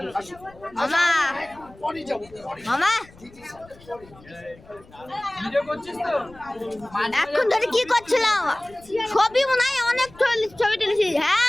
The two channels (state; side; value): noise; left; rumble, 24 dB below the sound